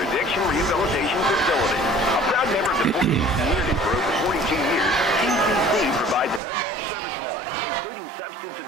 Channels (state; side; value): drops out; left; at 6.4 s